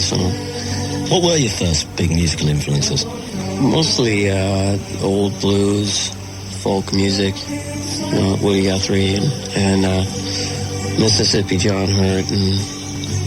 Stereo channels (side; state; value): both; identical; correlation 1.00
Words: song. What were your first big musical influences? Mostly old blues, folk music, Woody Guthrie, and Mississippi John Hurt, and